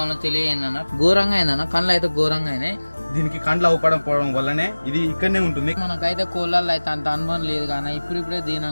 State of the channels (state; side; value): inverted; both; correlation -1.00